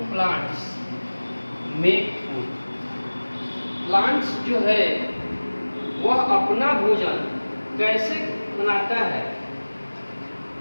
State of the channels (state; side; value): inverted; both; correlation -1.00